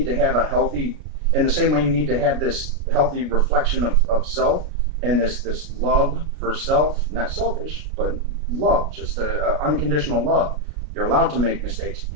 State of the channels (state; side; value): late; left; 33 ms